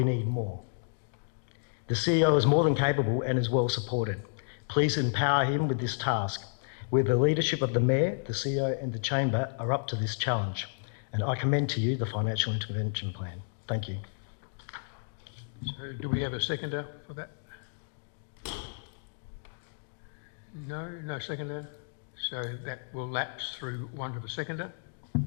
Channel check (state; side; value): silent; right; digital silence